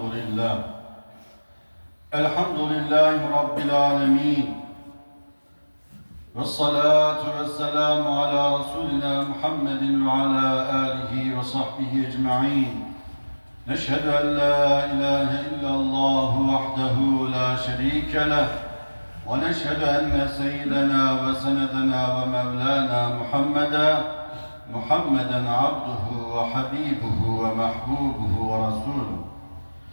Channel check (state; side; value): inverted; both; correlation -1.00